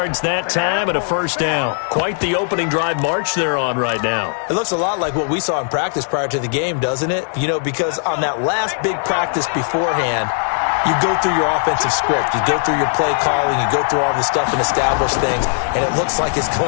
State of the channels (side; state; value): right; silent; digital silence